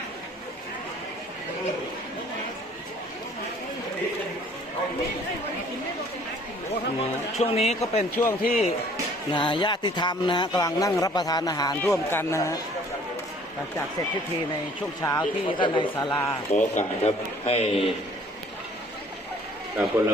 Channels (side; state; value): both; normal; correlation 0.56